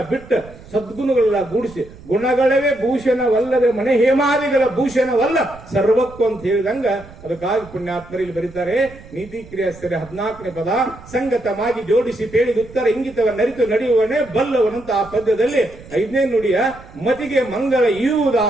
ಬಿಟ್ಟು ಸದ್ಗುಣಗಳೆಲ್ಲ ಗೂಡಿಸಿ, ಗುಣಗಳವೇ ಭೂಷಣವಲ್ಲವೇ ಮನೆ ಹೇಮಾದಿಗಳ ಭೂಷಣವಲ್ಲ ಸರ್ವಕ್ಕೂ ಅಂತ ಹೇಳಿದಂಗ ಅದಕ್ಕಾಗಿ ಪುಣ್ಯಾತ್ಮರು ಇಲ್ಲಿ ಬರೀತಾರೆ. ನೀತಿ ಕ್ರಿಯಾಸ್ತರೆ 14ನೇ ಪದ. ಸಂಗತವಾಗಿ ಜೋಡಿಸಿ ಪೇಳಿದ ಉತ್ತರ ಇಂಗಿತವನ್ನರಿತು ನಡೆಯುವನೇ ಬಲ್ಲವನಂತ ಆ ಪದ್ಯದಲ್ಲಿ 5ನೇ ನುಡಿಯ ಮತಿಗೆ ಮಂಗಳ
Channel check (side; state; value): right; noise; rumble, 20 dB below the sound